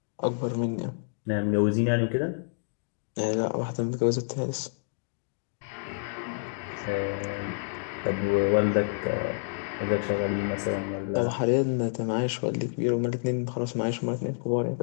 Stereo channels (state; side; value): silent; right; digital silence